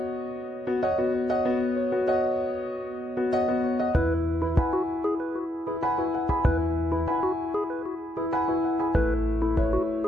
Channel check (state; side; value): normal; both; correlation 0.77